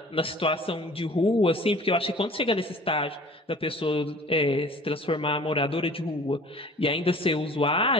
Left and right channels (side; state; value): both; normal; correlation 0.47